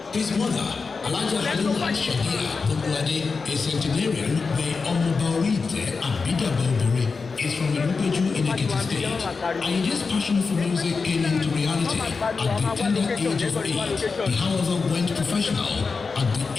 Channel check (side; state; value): right; quieter; 4.7 dB